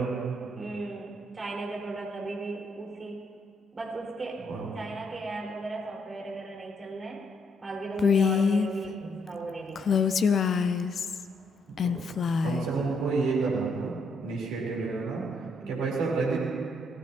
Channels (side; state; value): both; normal; correlation 0.73